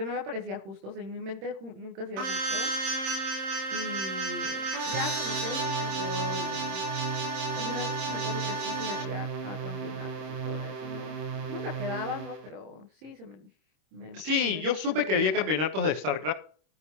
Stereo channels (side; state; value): left; late; 26 ms